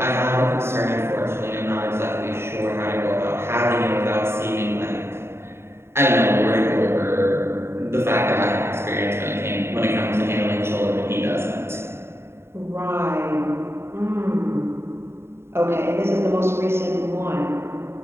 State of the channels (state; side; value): late; left; 0.12 ms